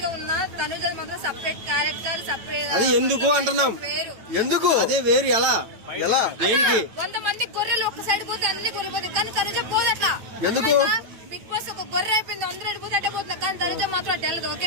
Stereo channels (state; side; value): late; left; 9.0 ms